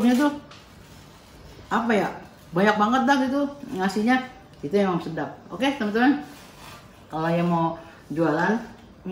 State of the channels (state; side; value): identical; both; correlation 1.00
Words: tuh apa ya, banyak banget dah gitu ngasihnya, itu emang sedap. Oke teman-teman, kalau yang mau jualan